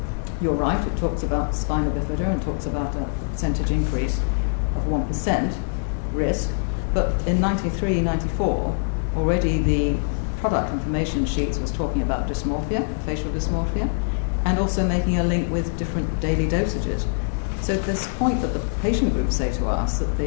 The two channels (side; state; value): right; silent; digital silence